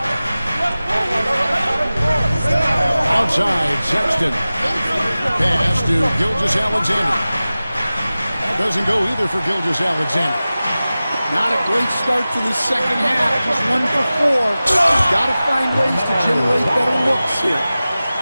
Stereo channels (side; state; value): both; inverted; correlation -0.96